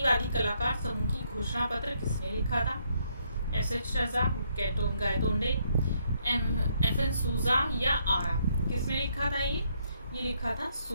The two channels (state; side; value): inverted; both; correlation -0.72